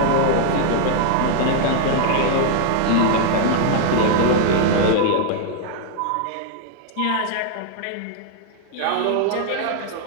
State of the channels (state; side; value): different; both; correlation 0.00